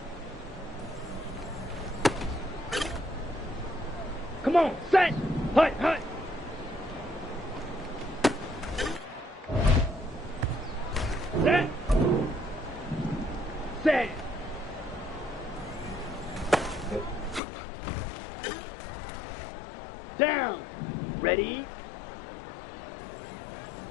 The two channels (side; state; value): right; drops out; at 17.4 s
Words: Come on, set. Hut, hut. Set. Set. Down. Ready.